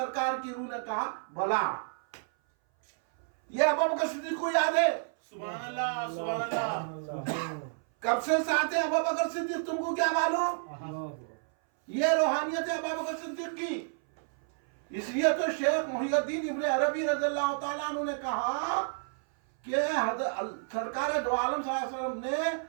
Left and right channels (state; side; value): silent; left; 58 dB below the other